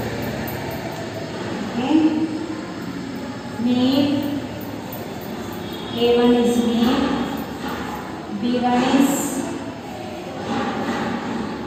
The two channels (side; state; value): both; identical; correlation 1.00